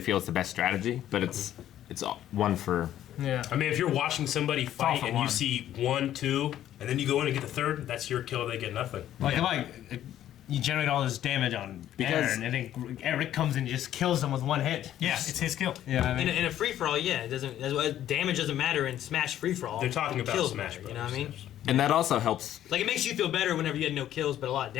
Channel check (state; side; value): quieter; right; 11.9 dB